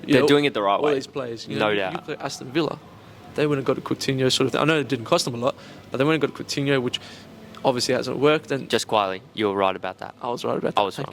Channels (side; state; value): both; identical; correlation 1.00